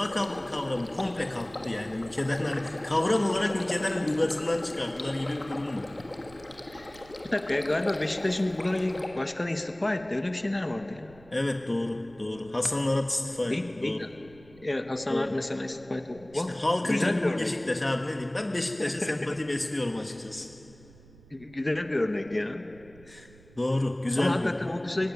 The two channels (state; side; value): noise; right; rumble, 23 dB below the sound